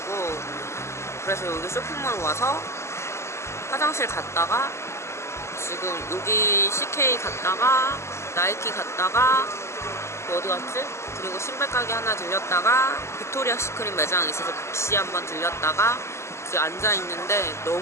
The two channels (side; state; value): right; late; 0.13 ms